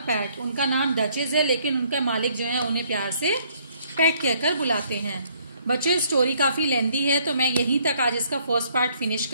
PAT. उनका नाम डचेज है, लेकिन उनका मालिक जो है उन्हें प्यार से पैट कहकर बुलाते हैं। बच्चों, स्टोरी काफी लेंदी है, तो मैं यहीं तक आज इसका फर्स्ट पार्ट फिनिश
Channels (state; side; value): inverted; both; correlation -0.65